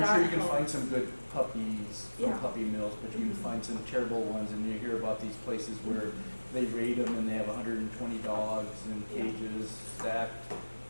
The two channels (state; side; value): inverted; both; correlation -1.00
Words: I'm And sure that you can find helps. some good puppies from Yeah. puppy mills, but you can find some terrible ones, and you hear about these places where they raid them and they have 120 dogs in Yeah. cages stacked